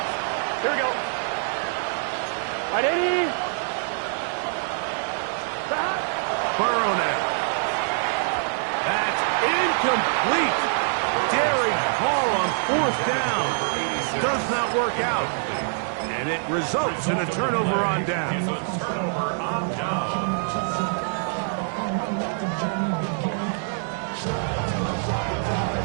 Here we go. 180. Burrow now. That's incomplete. Daring call on 4th down. Does not work out. And it results in a turnover on down.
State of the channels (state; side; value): silent; left; digital silence